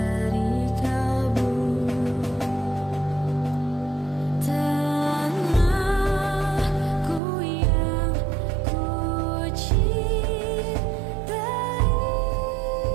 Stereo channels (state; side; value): drops out; left; at 7.2 s